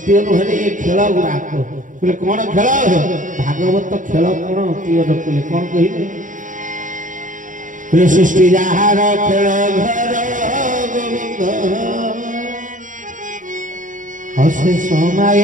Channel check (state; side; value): late; left; 0.38 ms